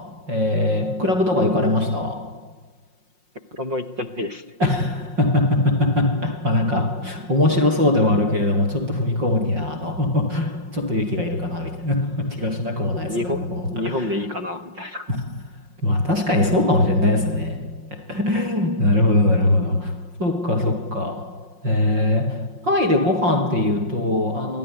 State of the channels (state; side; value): late; left; 5.6 ms